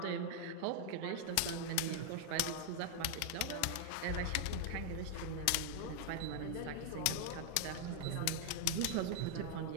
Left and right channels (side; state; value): both; different; correlation 0.00